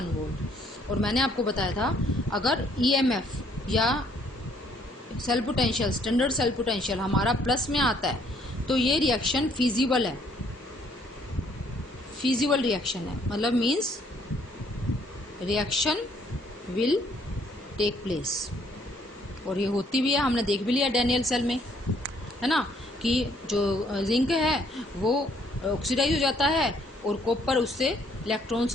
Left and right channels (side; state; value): both; normal; correlation 0.65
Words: वोल्ट। और मैंने आपको बताया था अगर ईएमएफ या cell potential, standard cell potential हमारा प्लस में आता है तो ये रिएक्शन फिजिबल है, फिजिबल रिएक्शन है, मतलब means reaction will take place. और ये होती भी है, हमने देख भी लिया डैनियल सेल में, है ना, कि जो जिंक है वो ऑक्सीडाइज हो जाता है और कॉपर उससे इलेक्ट्रॉन्स